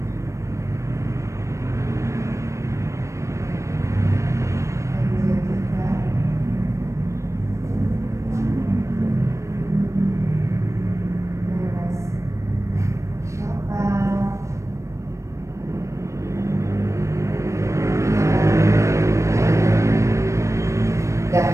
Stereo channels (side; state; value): left; late; 0.15 ms